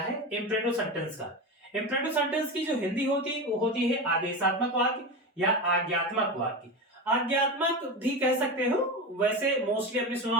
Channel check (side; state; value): both; normal; correlation 0.21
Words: इंपरेटिव सेंटेंस का। इंपरेटिव सेंटेंस की जो हिंदी होती है वो होती है आदेशात्मक वाक्य या आज्ञात्मक वाक्य। आज्ञात्मक भी कह सकते हो, वैसे मोस्टली आपने सुना